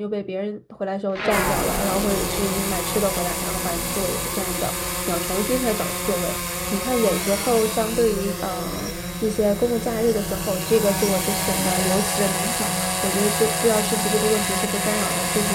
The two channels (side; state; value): both; identical; correlation 1.00